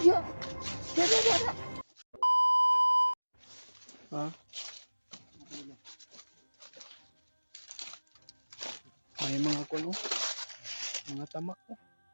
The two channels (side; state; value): both; inverted; correlation -1.00